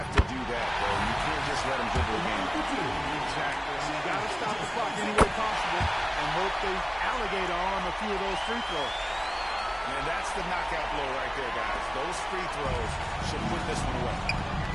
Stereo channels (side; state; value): both; identical; correlation 1.00